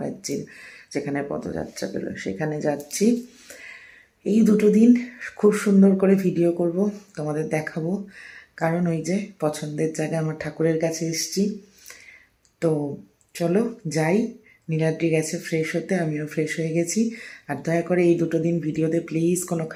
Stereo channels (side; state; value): both; identical; correlation 1.00